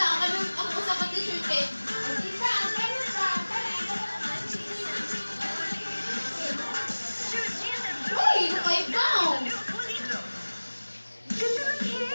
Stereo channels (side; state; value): both; inverted; correlation -1.00